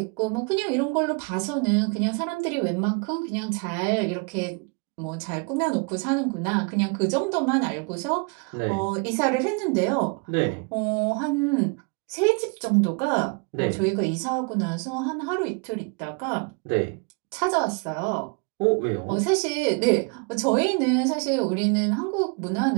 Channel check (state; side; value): quieter; left; 33.5 dB